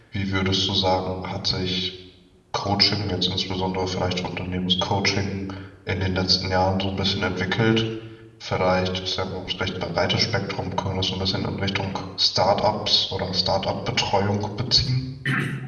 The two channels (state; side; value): identical; both; correlation 1.00